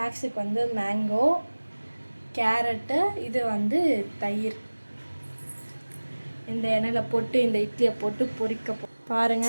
வந்து மேங்கோ, கேரட்டு, இது வந்து தயிர். இந்த எண்ணெயில் போட்டு இந்த இட்லியை போட்டு பொரிக்க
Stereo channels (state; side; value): inverted; both; correlation -1.00